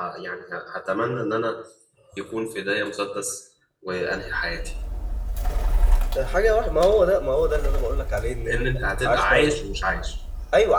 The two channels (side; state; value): both; identical; correlation 1.00